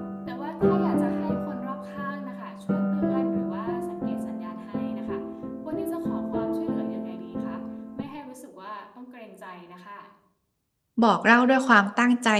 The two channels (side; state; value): both; identical; correlation 1.00